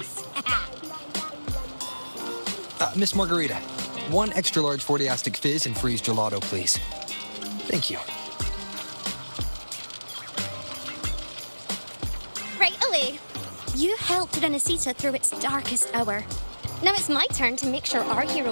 Miss Margarita, one extra large 40-astic fizz and freeze gelato, please. Thank you. Right away. You helped Renesita through its darkest hour. Now it's my turn to make sure our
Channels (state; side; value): inverted; both; correlation -1.00